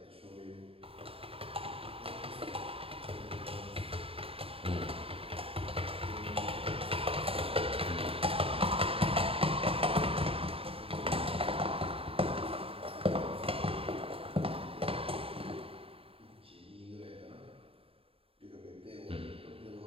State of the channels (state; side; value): late; left; 0.27 ms